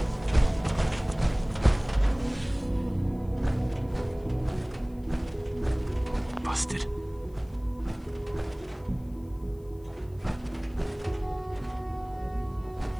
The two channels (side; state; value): left; noise; hiss, 30 dB below the sound